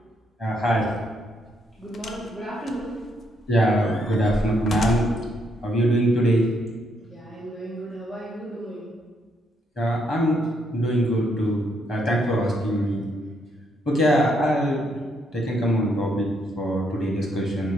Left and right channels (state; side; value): normal; both; correlation 0.75